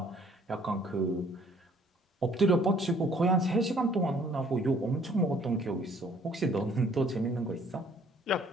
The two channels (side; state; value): both; normal; correlation 0.59